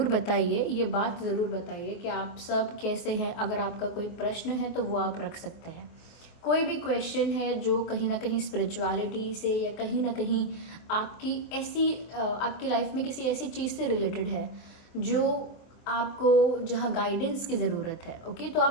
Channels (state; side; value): late; right; 24 ms